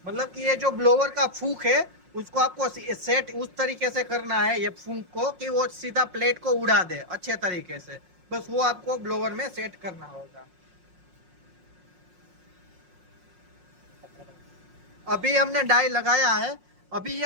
मतलब कि ये जो ब्लोवर का फूक है उसको आपको सेट उस तरीके से करना है, ये फूक को, कि वो सीधा प्लेट को उड़ा दे अच्छे तरीके से। बस वो आपको ब्लोवर में सेट करना होगा। अभी हमने डाई लगाया है। अभी ये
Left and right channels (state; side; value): late; left; 5.5 ms